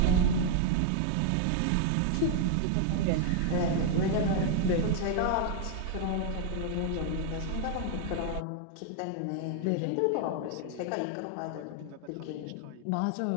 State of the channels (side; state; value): both; different; correlation 0.00